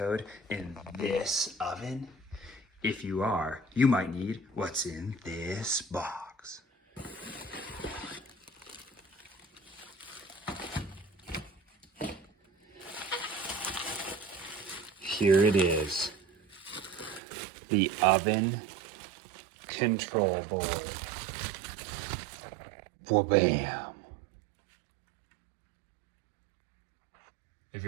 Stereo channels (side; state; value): left; drops out; at 17.2 s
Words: in this oven? If you are, you might need what's in this box. Here it is, the oven control board. Wha-bam. If